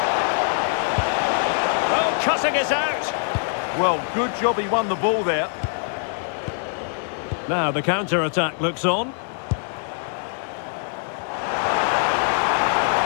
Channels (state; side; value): silent; right; digital silence